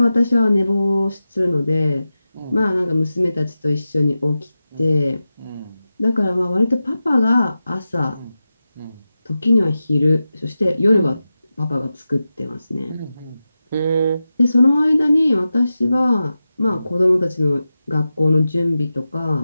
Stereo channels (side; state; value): both; inverted; correlation -0.93